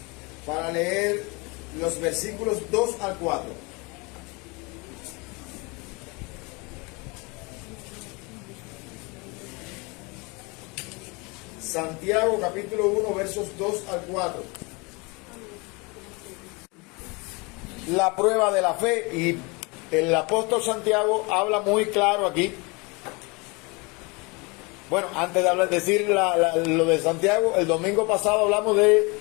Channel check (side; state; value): right; quieter; 27.9 dB